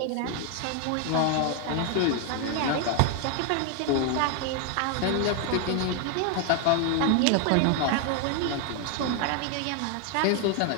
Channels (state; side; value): different; both; correlation 0.01